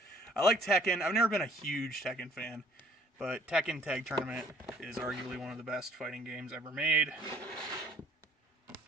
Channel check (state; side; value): normal; both; correlation 0.58